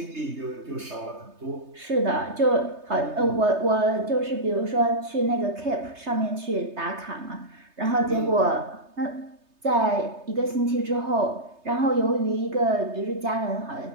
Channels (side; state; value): left; late; 3.3 ms